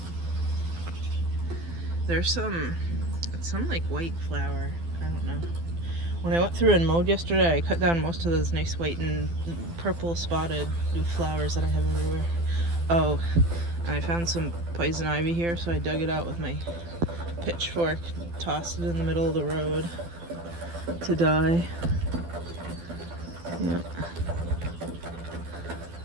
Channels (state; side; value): late; left; 12 ms